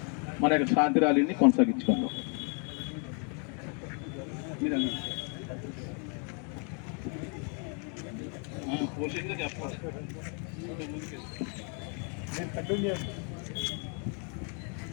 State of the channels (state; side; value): quieter; right; 39.4 dB